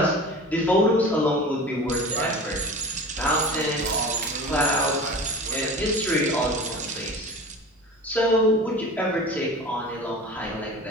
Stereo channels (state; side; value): normal; both; correlation 0.37